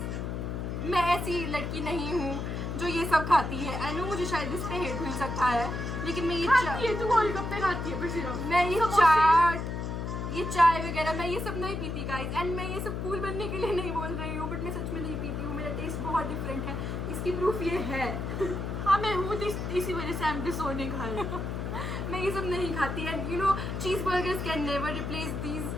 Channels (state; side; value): noise; left; hum, 3 dB below the sound